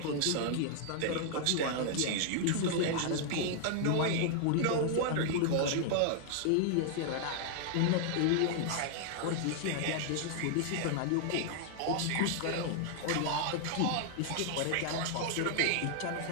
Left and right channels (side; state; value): both; different; correlation 0.00